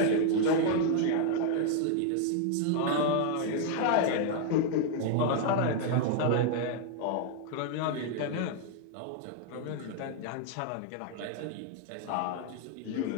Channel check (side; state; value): both; different; correlation 0.00